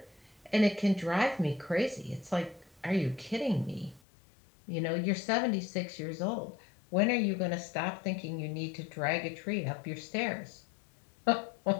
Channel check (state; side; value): drops out; right; at 4.0 s